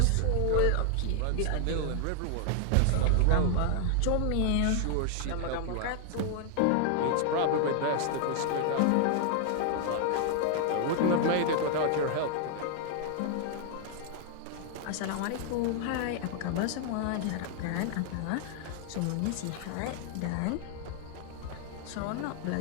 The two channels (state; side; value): different; both; correlation 0.00